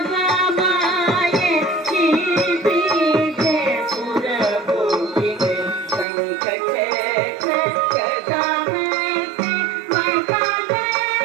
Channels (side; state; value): left; drops out; at 6.1 s